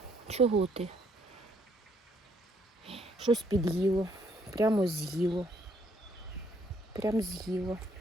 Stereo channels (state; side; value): normal; both; correlation 0.68